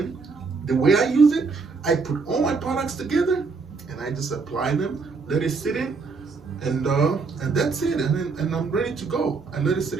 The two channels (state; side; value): quieter; left; 4.5 dB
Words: The way I use it, I put all my products together and I just apply them, let it sit in, and that's it. And I'm ready to go. I let it sit